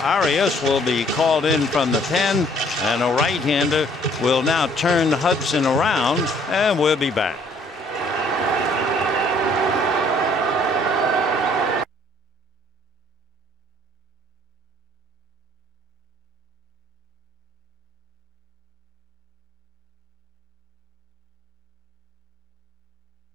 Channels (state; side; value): normal; both; correlation 0.61